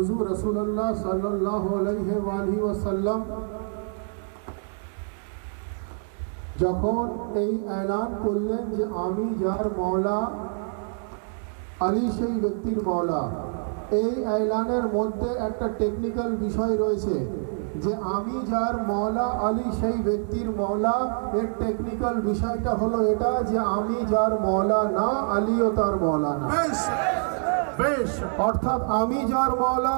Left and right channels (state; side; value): silent; left; 61 dB below the other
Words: রাসূলুল্লাহ সাল্লাল্লাহু আলাইহি ওয়াসাল্লাম যখন এই এলান করলেন যে আমি যার মাওলা আলী সেই ব্যক্তির মাওলা, এই এলানের মধ্যে একটা টেকনিক্যাল বিষয় রয়েছে যে আমি যার মাওলা আলী সেই ব্যক্তির মাওলা। এর টেকনিক্যাল বিষয়টা হলো এটা যে আমি যার মাওলা না, আলীও তার মাওলা না। বেশ, অর্থাৎ আমি যার মাওলা